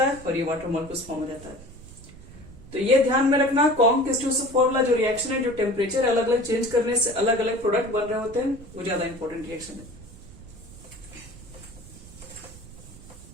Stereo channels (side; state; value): right; noise; rumble, 18 dB below the sound